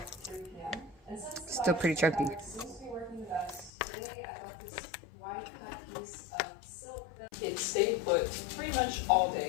Still pretty chunky. It stayed put pretty much all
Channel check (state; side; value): drops out; right; at 3.7 s